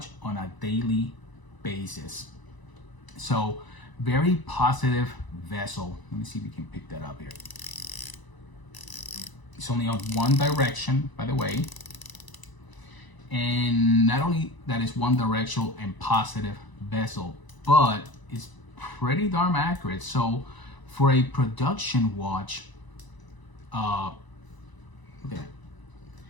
on a daily basis. So very positive vessel. Let me see if we can pick that up here. It's only on one direction, by the way. And not only that is one directional and positive bezel, but it's pretty darn accurate. So for a production watch,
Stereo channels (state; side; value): late; right; 1.0 ms